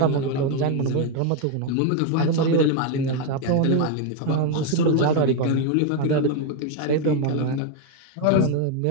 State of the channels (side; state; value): both; different; correlation 0.01